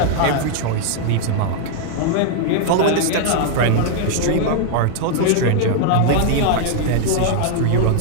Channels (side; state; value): both; different; correlation 0.00